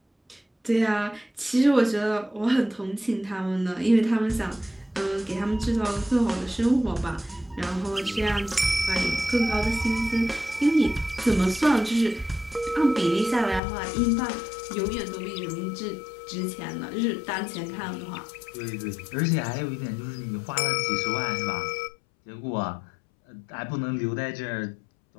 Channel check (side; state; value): right; drops out; at 13.6 s